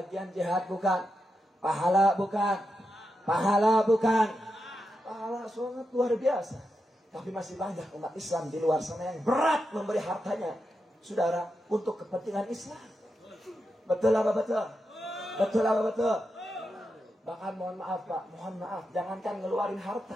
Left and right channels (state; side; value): normal; both; correlation 0.87